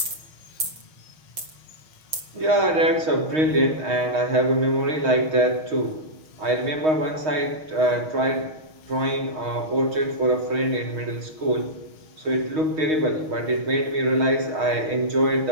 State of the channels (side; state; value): left; late; 6.4 ms